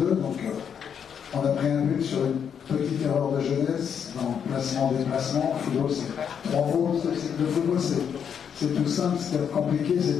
Donc on a pris un but sur une petite erreur de jeunesse dans le placement-déplacement. Le football, c'est 3 fautes. Le football, c'est tout simple. Ce qui est compliqué, c'est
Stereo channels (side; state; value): right; quieter; 7.7 dB